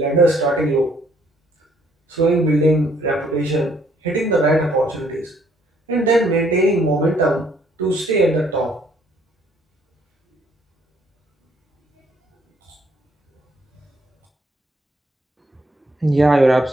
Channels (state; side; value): normal; both; correlation 0.66